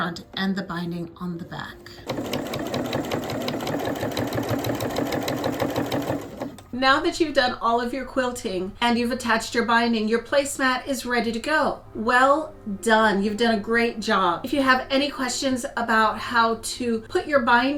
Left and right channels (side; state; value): both; identical; correlation 1.00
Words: and the binding on the back. Now that you've done all of your quilting and you've attached your binding, your placemat is ready to go. Well done. You've done a great job. If you have any questions about how to put your